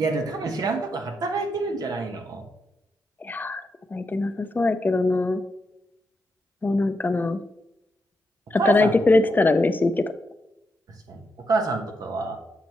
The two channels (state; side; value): normal; both; correlation 0.83